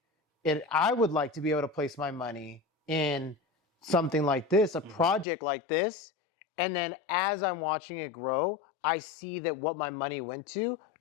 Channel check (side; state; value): right; drops out; at 5.2 s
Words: to be able to place my money in something like this, a project like this, and then as I'm watching it grow, I see that what my money went to